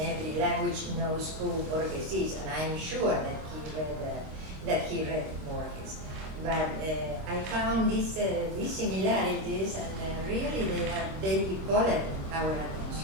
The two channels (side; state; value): left; late; 25 ms